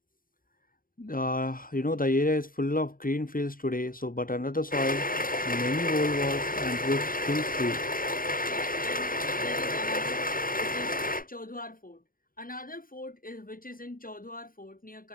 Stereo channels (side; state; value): right; late; 0.41 ms